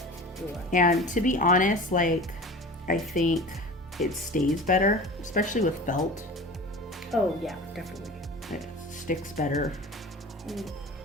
And to be honest, like, I think it stays better, especially with felt. Oh yeah, definitely. It sticks better.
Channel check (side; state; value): both; normal; correlation 0.36